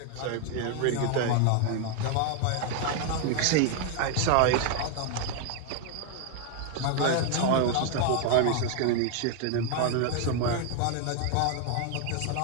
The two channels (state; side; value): different; both; correlation 0.01